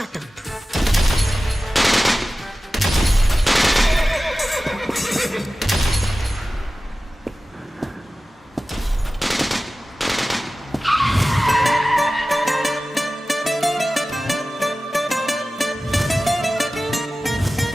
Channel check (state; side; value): normal; both; correlation 0.96